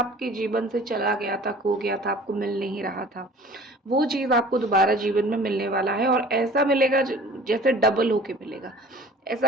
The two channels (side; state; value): both; normal; correlation 0.46